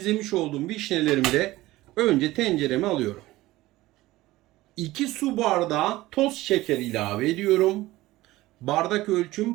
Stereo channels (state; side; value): quieter; left; 17.8 dB